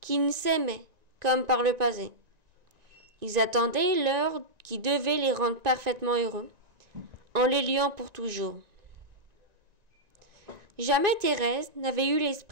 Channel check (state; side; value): late; left; 1.9 ms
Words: qu'ils s'aimaient comme par le passé. Ils attendaient l'heure qui devait les rendre parfaitement heureux, en les liant pour toujours. Jamais Thérèse n'avait eu